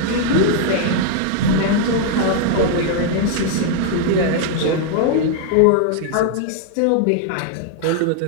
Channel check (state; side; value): different; both; correlation 0.00